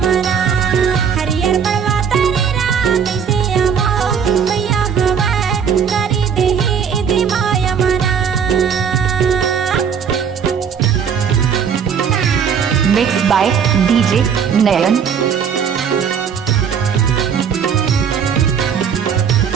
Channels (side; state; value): left; quieter; 7.2 dB